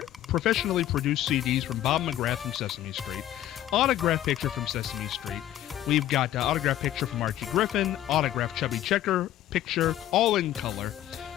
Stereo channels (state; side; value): quieter; right; 12.9 dB